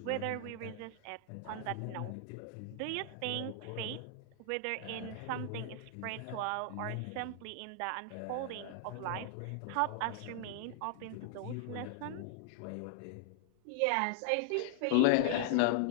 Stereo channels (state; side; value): different; both; correlation -0.01